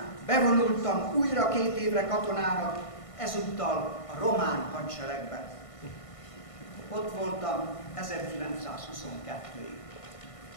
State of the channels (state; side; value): late; right; 1.5 ms